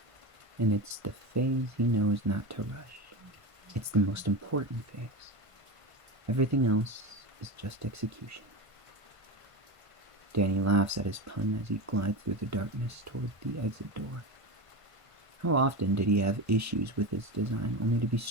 And it's the phase he knows not to rush. It's the most important phase. Everything else is just execution. Danny laughs at his pun as he glides through the darkness toward the exit door. How often did he have issues with his design only to be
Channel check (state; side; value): late; left; 1.5 ms